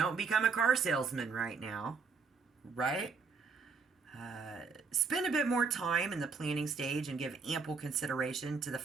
become a car salesman right now, right? Spend a bit more time in the planning stage and give ample consideration to the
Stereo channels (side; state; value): left; quieter; 5.0 dB